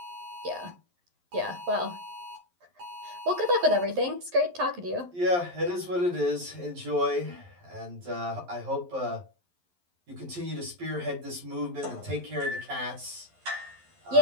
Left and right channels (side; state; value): left; late; 11 ms